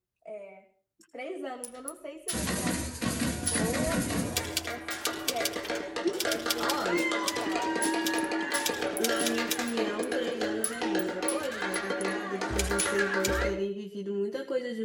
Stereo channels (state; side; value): identical; both; correlation 1.00